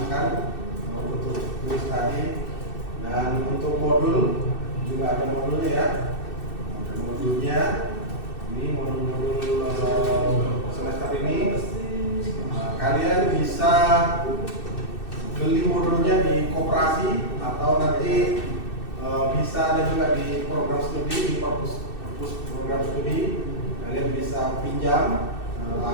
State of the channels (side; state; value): right; late; 2.6 ms